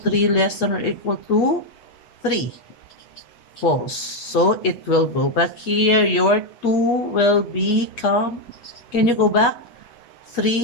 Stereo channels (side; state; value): right; late; 8.4 ms